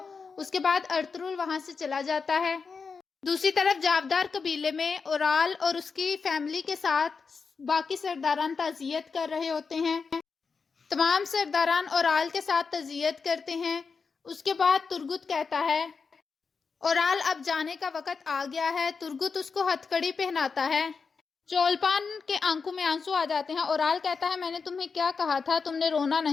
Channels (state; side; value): quieter; right; 5.1 dB